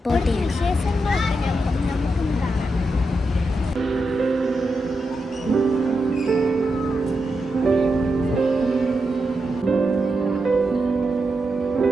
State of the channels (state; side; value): normal; both; correlation 0.86